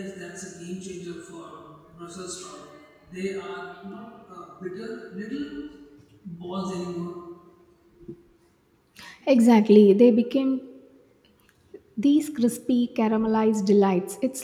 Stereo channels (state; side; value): identical; both; correlation 1.00